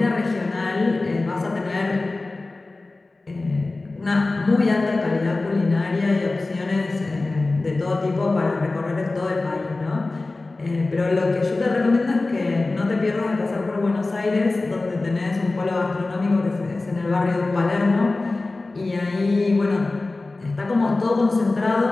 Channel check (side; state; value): right; quieter; 3.3 dB